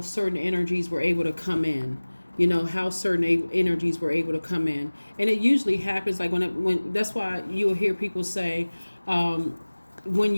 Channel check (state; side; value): inverted; both; correlation -1.00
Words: certain energies were able to come in. How certain energies were able to come in. And it usually happens like when that's why you'll hear people say,